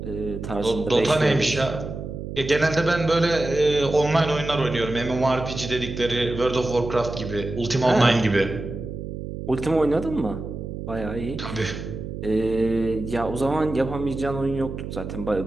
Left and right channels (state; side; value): noise; right; hum, 8 dB below the sound